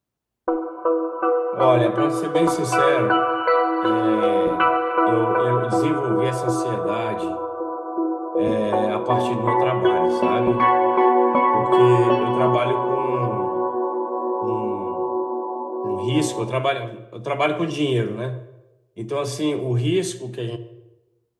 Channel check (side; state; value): both; identical; correlation 1.00